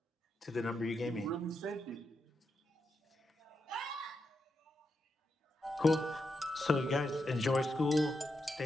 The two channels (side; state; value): both; normal; correlation 0.85